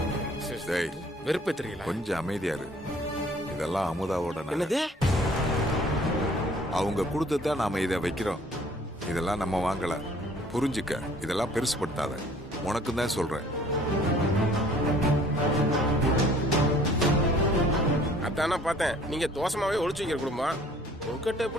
டேய், வெறுப்பே தெரியல. கொஞ்சம் அமைதியா இரு. இதெல்லாம் அமுதாவோட நகை. என்னது? அவங்க கொடுத்துதான் நாம இதை வைக்கிறோம். இதெல்லாம் நம்ம வாங்கல, புரிஞ்சுக்க. இதெல்லாம் பெருசுப்படுத்தாத, உனக்கு தான் சொல்றேன். அதானே பார்த்தேன் நீங்க தோசமாவே ஒளிச்சு வைக்கிற குடும்பம். உங்ககிட்ட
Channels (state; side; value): normal; both; correlation 0.55